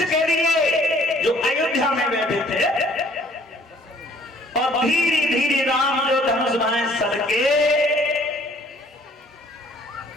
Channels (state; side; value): normal; both; correlation 0.58